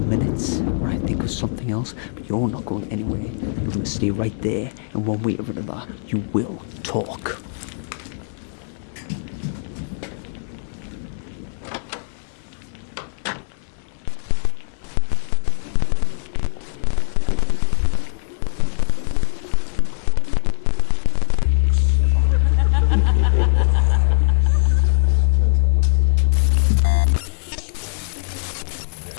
when I think of something else, but you're not going anywhere. You're going to stay right there, and one way or another, you will talk.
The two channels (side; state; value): right; silent; digital silence